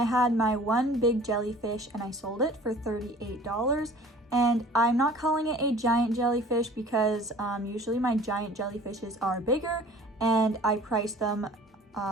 had my 1 big jellyfish and I sold it for $38. And I'm not calling it a giant jellyfish because usually my giant jellyfishes are bigger, and I priced them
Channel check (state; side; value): normal; both; correlation 0.47